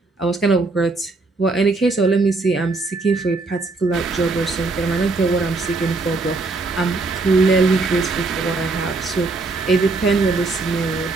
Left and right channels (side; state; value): left; quieter; 3.5 dB